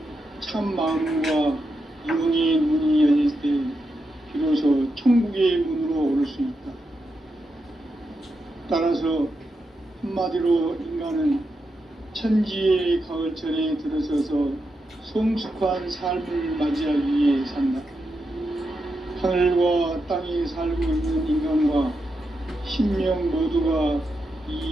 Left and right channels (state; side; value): normal; both; correlation 0.86